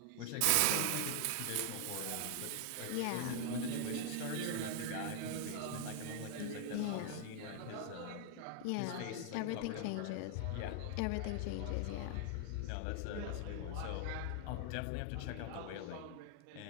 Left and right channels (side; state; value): both; different; correlation 0.00